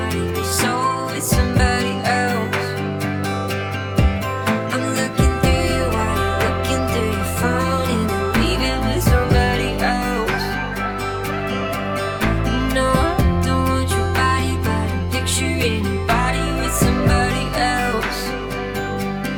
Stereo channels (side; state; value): both; identical; correlation 1.00